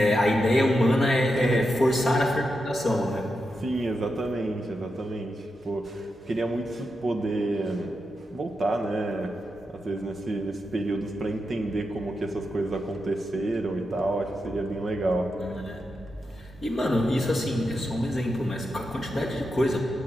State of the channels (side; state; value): both; normal; correlation 0.87